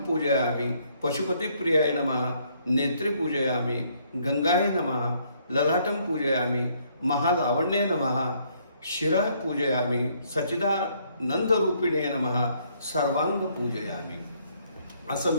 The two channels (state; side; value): inverted; both; correlation -0.67